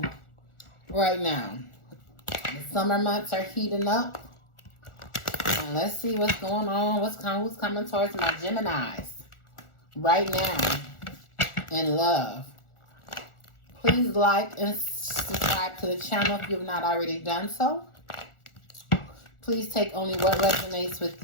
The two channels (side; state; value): right; late; 1.4 ms